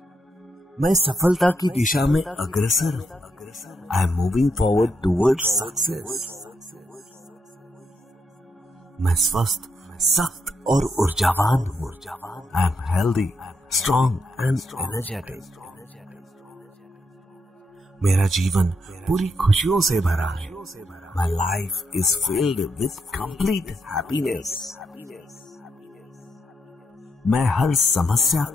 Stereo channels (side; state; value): both; normal; correlation 0.80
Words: मैं सफलता की दिशा में अग्रसर हूँ। I am moving forward towards success. मैं स्वस्थ, सख्त और ऊर्जावान हूँ। I am healthy, strong and energetic. मेरा जीवन पूरी खुशियों से भरा है। My life is filled with complete happiness. मैं हर समस्या